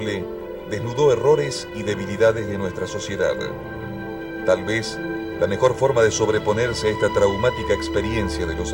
desnudó errores y debilidades de nuestra sociedad. Tal vez la mejor forma de sobreponerse a esta traumática experiencia de los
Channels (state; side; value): identical; both; correlation 1.00